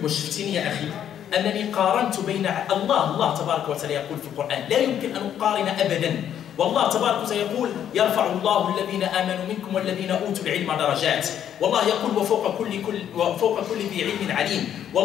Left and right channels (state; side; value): quieter; right; 9.8 dB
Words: وشفتني يا أخي أنني قارنت بين الله تبارك وتعالى يقول في القرآن لا يمكن أن نقارن أبدا. والله تبارك وتعالى يقول يرفع الله الذين آمنوا منكم والذين أوتوا العلم درجات. والله يقول وفوق كل ذي علم عليم.